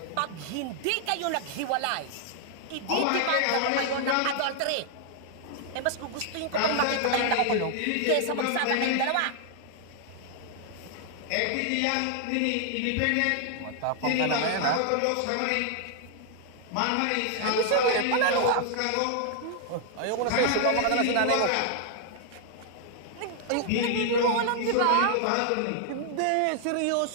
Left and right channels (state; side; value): different; both; correlation 0.00